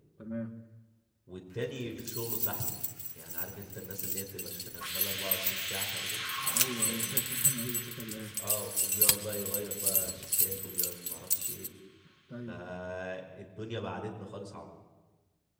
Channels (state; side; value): identical; both; correlation 1.00